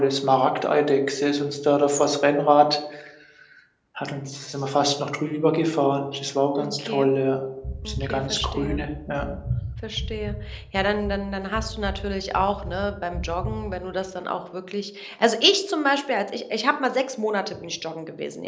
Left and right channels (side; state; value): both; identical; correlation 1.00